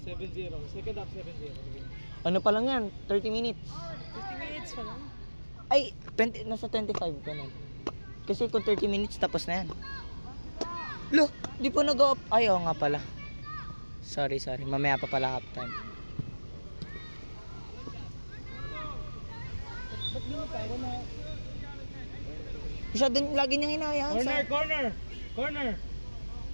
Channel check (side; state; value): both; inverted; correlation -1.00